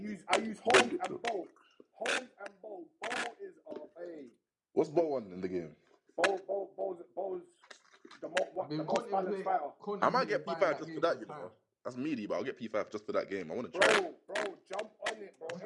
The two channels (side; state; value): both; identical; correlation 1.00